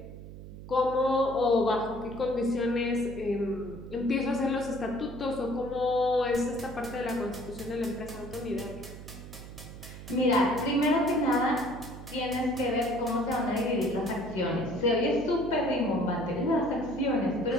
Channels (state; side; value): noise; right; hum, 13 dB below the sound